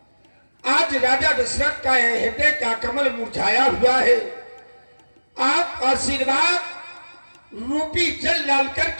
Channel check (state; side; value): inverted; both; correlation -1.00